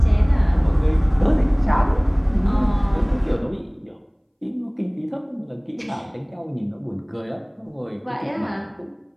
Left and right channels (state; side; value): identical; both; correlation 1.00